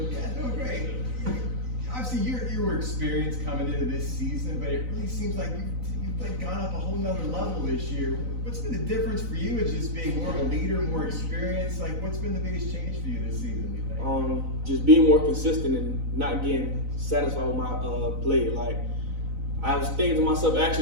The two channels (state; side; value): late; left; 4.0 ms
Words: Yeah, doing great. Obviously, you were experienced coming into this season, but it really seems like you've like gone up a whole nother level this year. What's been the difference for you as just being more of a leader, more experienced? Like, what's been the biggest change for you this season, you think? Just being more consistent and not getting satisfied with my play. Like, I was thinking to myself,